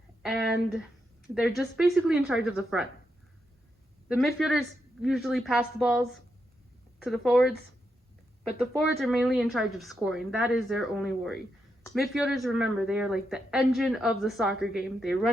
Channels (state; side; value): normal; both; correlation 0.83